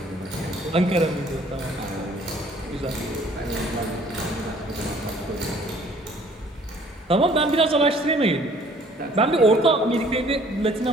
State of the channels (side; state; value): both; normal; correlation 0.57